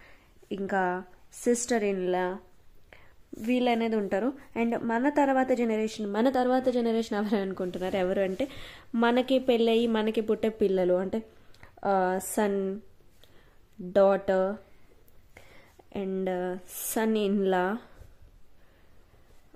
ఇంకా సిస్టర్ ఇన్ లా, వీళ్ళు అనేది ఉంటారు. అండ్ మన తర్వాత జనరేషన్ ఎవరు అనుకుంటున్నారు? ఎవరు అంటే మనకి పెళ్ళయి మనకి పుట్టే పిల్లలు, అంటే son, daughter and son in law,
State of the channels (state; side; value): identical; both; correlation 1.00